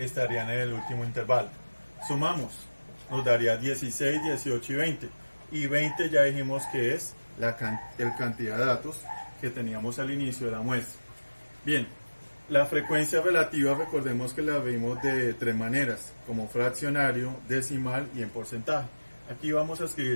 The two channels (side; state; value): both; inverted; correlation -1.00